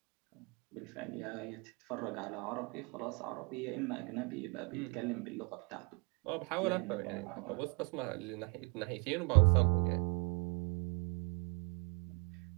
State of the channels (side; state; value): left; quieter; 30.4 dB